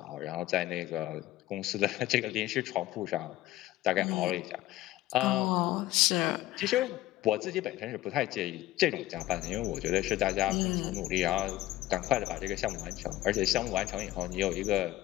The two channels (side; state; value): right; quieter; 15.8 dB